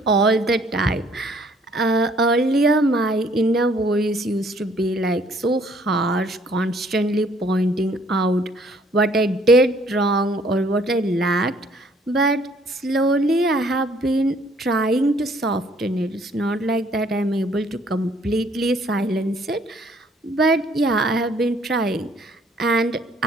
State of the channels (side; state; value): both; normal; correlation 0.61